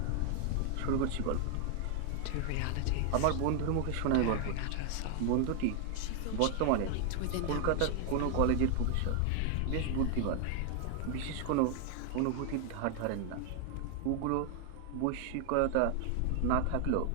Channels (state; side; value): different; both; correlation 0.00